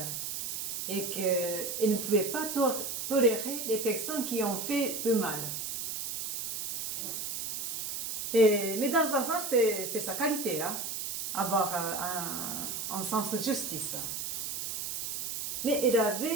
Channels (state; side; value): noise; right; hiss, 3 dB below the sound